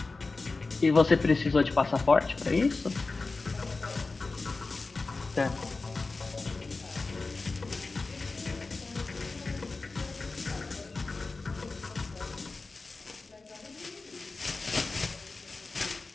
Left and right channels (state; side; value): quieter; right; 3.7 dB